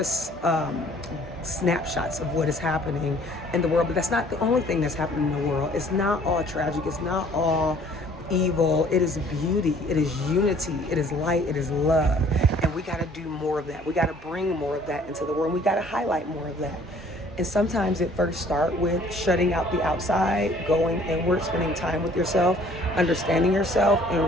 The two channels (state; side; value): normal; both; correlation 0.56